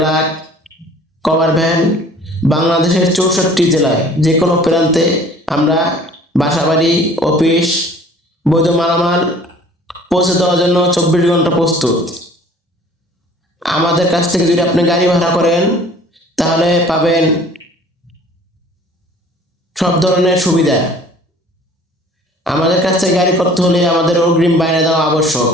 cover van. বাংলাদেশের 64 জেলায় যে কোনো প্রান্তে আমরা বাসাবাড়ি, অফিস, বৈধ মালামাল পৌঁছে দেওয়ার জন্য 24 ঘন্টা প্রস্তুত। আমাদের কাছ থেকে যদি আপনি গাড়ি ভাড়া করেন তাহলে পাবেন সব ধরনের সুবিধা। আমাদের কাছ থেকে গাড়ি করতে হলে আমাদের অগ্রিম বায়না দেওয়া আবশ্যক।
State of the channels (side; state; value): both; normal; correlation 0.51